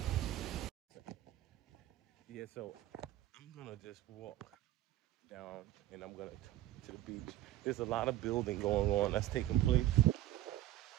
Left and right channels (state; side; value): quieter; left; 14.2 dB